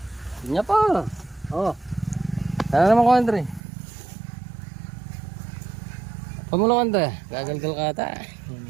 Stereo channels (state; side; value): drops out; left; at 3.6 s